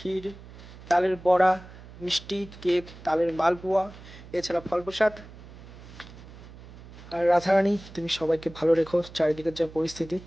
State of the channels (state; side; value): noise; right; hum, 17 dB below the sound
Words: তালের বড়া, মিষ্টি, কেক, তালের মালপোয়া, এছাড়া ফল প্রসাদ। আর রাধারানী তুমি সবাইকে ভালো রেখো, চারিদিকের যা পরিস্থিতি